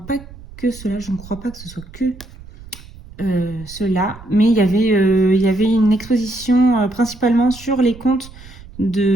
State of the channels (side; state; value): right; noise; rumble, 18 dB below the sound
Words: que cela, je ne crois pas que ce soit que cela, mais il y avait une exposition principalement sur les contes